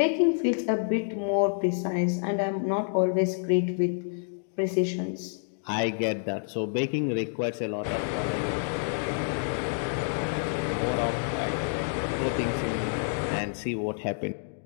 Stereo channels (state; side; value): silent; right; digital silence